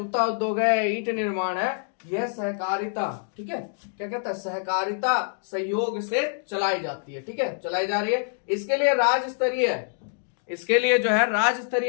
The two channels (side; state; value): right; silent; digital silence